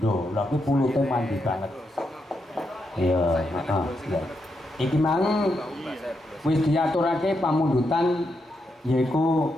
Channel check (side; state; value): both; normal; correlation 0.82